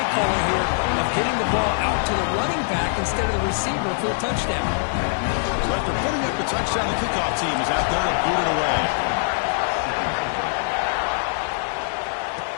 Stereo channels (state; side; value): silent; right; digital silence